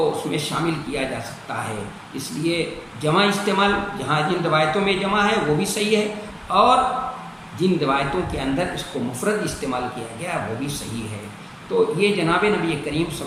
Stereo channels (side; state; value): both; identical; correlation 1.00